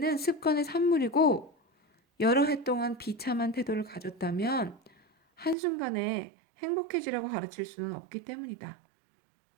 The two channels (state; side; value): drops out; left; at 5.6 s